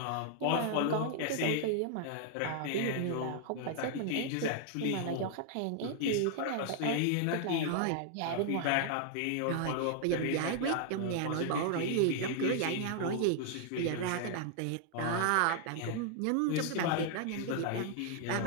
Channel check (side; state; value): both; different; correlation 0.00